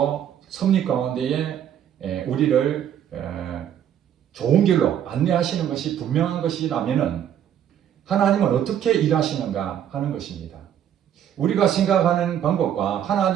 섭리 가운데에 우리를 좋은 길로 안내하시는 것이 분명한 것이라면 하나님은 어떻게 일하시는가 하는 것입니다. 우리가 생각하는 방법과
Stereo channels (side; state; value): left; quieter; 9.9 dB